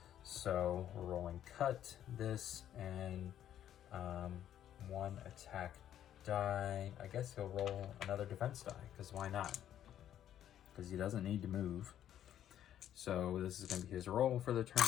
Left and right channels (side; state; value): right; quieter; 10.9 dB